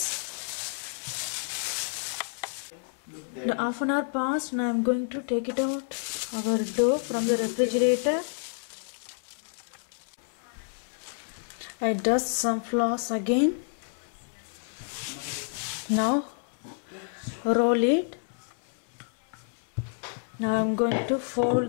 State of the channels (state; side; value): silent; right; 58 dB below the other